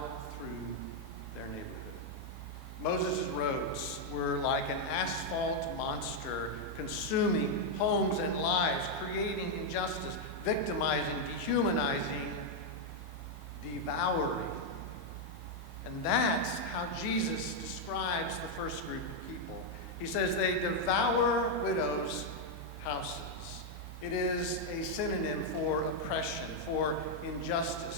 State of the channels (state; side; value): normal; both; correlation 0.00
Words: through their neighborhood. Moses' roads were like an asphalt monster, consuming homes and lives, creating injustice, victimizing, dehumanizing, devouring. And that's how Jesus describes the first group of people. He says they devour widows' houses. It is a synonym for oppression, for